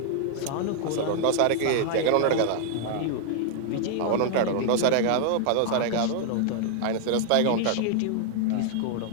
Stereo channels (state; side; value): different; both; correlation 0.00